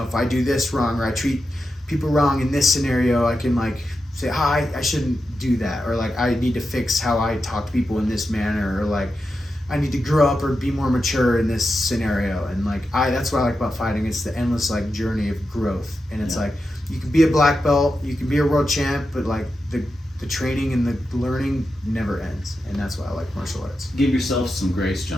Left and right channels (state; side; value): normal; both; correlation 0.89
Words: I do this wrong or I treat people wrong in this scenario, I can like say I shouldn't do that, or like I need to fix how I talk to people in this manner, or like I need to grow up or be more mature in this scenario. And like that's what I like about fighting. It's the endless like journey of growth. And it's like you can be a black belt, you can be a world champ, but like the training and the learning never ends. And that's why I like martial arts. Give yourself some grace,